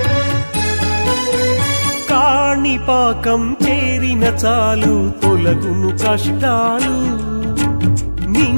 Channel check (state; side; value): inverted; both; correlation -1.00